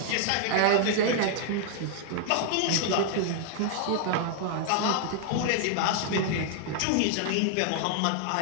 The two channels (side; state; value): both; different; correlation 0.00